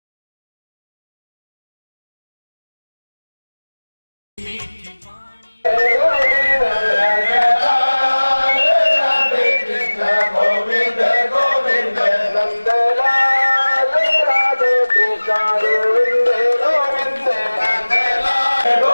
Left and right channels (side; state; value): both; inverted; correlation -1.00